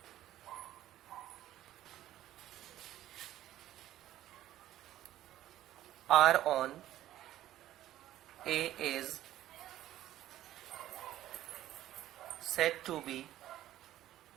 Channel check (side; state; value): left; quieter; 13.4 dB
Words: R on A is said to be